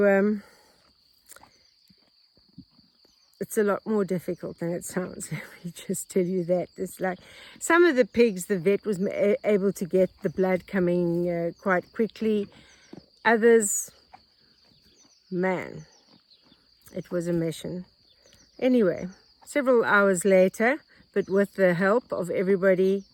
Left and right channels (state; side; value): identical; both; correlation 1.00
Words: it's a lot more difficult than it sounds. Let me just tell you that. It's like some of the pigs, the vet was able to get the blood coming quite quickly. Others, man, it was a mission. Anyway, several hours later, but with the help of everybody,